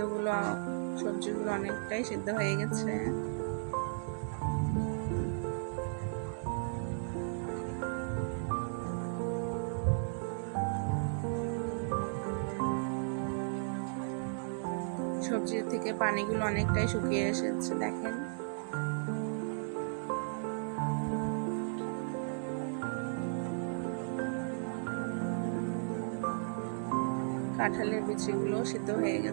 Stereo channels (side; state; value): left; silent; digital silence